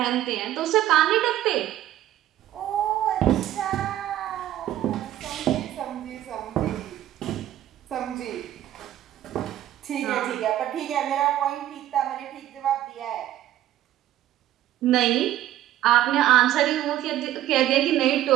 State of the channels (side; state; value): left; quieter; 13.0 dB